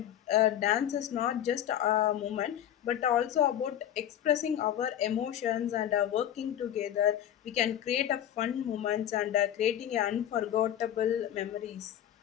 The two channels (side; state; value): right; quieter; 10.9 dB